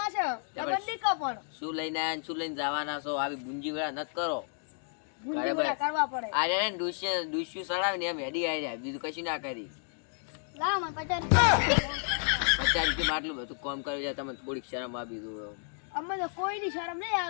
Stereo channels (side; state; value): right; silent; 57 dB below the other